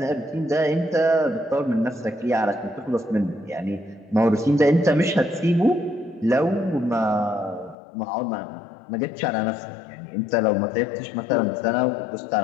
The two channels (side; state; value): right; drops out; at 7.8 s